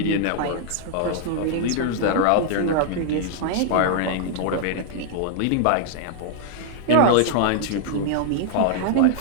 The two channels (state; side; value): different; both; correlation 0.00